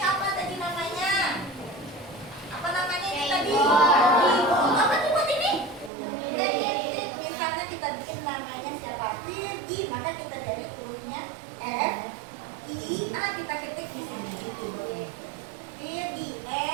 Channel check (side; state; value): left; drops out; at 5.9 s